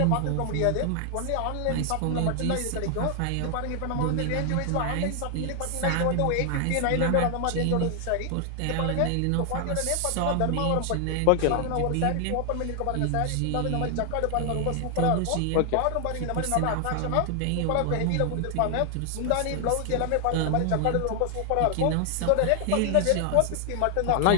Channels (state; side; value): different; both; correlation 0.00